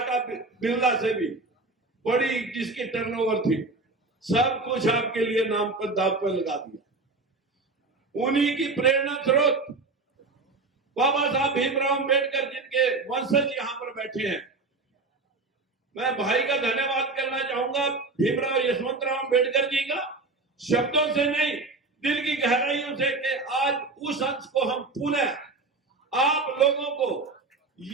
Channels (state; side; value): quieter; left; 3.6 dB